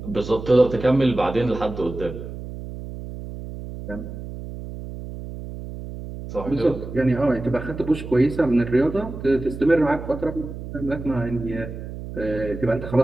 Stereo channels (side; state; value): right; noise; hum, 10 dB below the sound